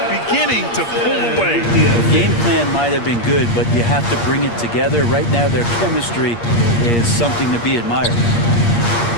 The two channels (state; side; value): late; right; 8.5 ms